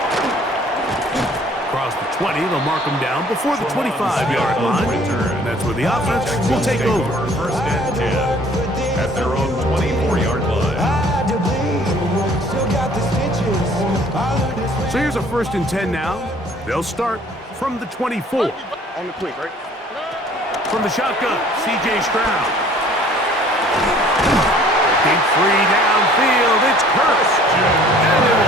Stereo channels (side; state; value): both; normal; correlation 0.54